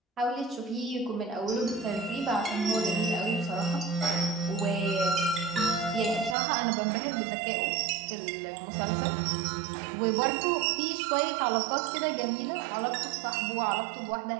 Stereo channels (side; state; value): left; drops out; at 6.4 s